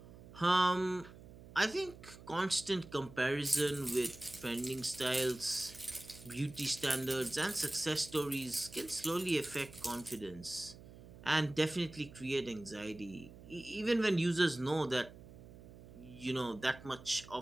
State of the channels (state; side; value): noise; right; hum, 18 dB below the sound